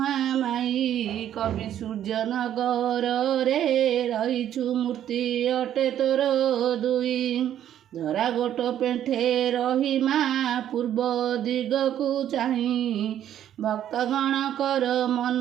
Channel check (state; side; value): quieter; left; 10.8 dB